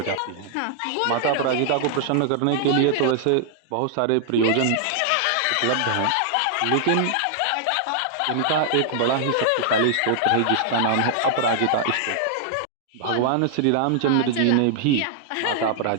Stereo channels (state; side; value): different; both; correlation -0.01